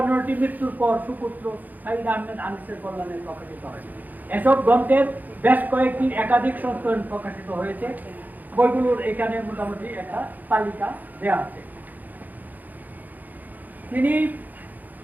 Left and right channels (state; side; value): late; left; 0.083 ms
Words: মৃত্যুর পর সুপুত্র সাইদ আহমেদ আনিসের কল্যাণে প্রকাশিত হয়েছে। এসব গ্রন্থের বেশ কয়েকটি একাধিক সংস্করণ প্রকাশিত হয়েছে। বইগুলোর এখানে মোটামুটি একটা তালিকা দেওয়া আছে। তিনি